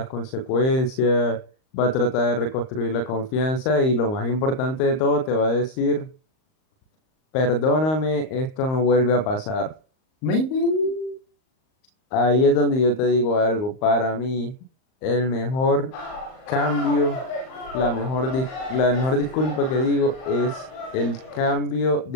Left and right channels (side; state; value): right; late; 38 ms